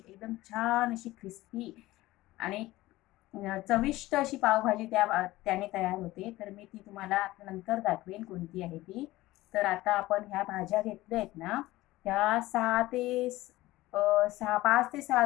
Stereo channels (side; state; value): right; quieter; 17.7 dB